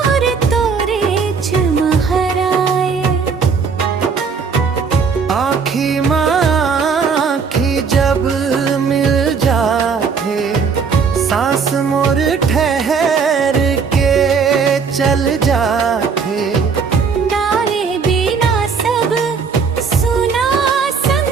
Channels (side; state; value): left; quieter; 5.6 dB